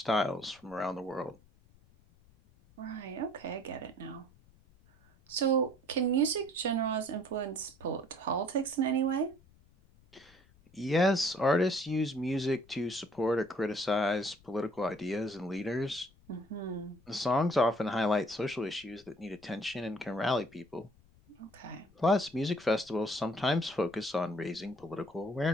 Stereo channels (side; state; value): left; noise; rumble, 28 dB below the sound